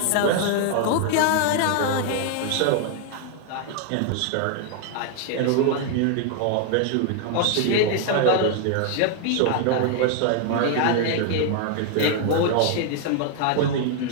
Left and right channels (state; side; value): different; both; correlation 0.00